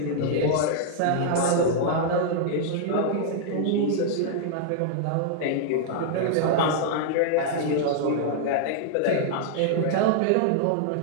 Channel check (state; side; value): different; both; correlation -0.01